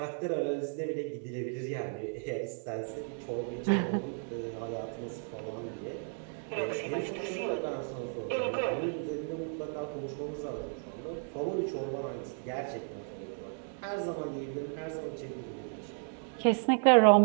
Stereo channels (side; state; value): left; silent; 55 dB below the other